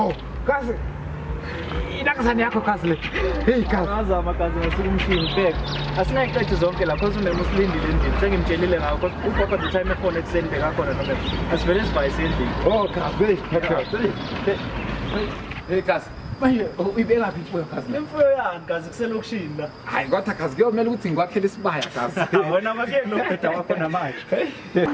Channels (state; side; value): identical; both; correlation 1.00